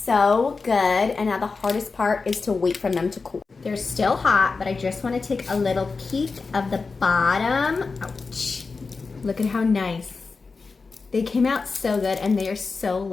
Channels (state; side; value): quieter; right; 4.4 dB